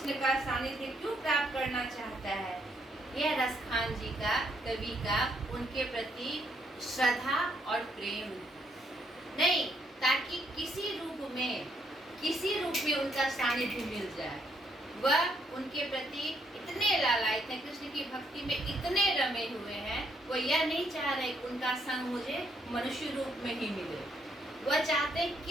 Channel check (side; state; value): both; normal; correlation 0.73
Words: का सानिध्य क्यों प्राप्त करना चाहता है? यह रसखान जी का, कवि का उनके प्रति श्रद्धा और प्रेम नहीं, ताकि किसी रूप में उनका सानिध्य मिल जाए। वह उनके प्रति इतने लालायित हैं, कृष्ण की भक्ति में इतने रमे हुए हैं, वो यह नहीं चाह रहे कि उनका संग मुझे मनुष्य रूप में ही मिले। वह चाहते हैं